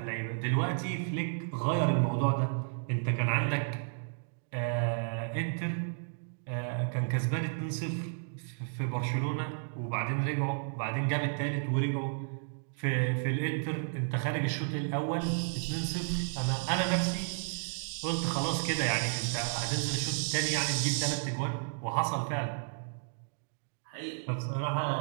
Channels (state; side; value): silent; left; digital silence